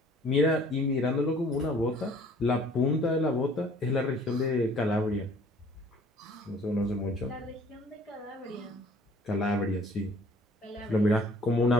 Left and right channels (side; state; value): both; normal; correlation 0.54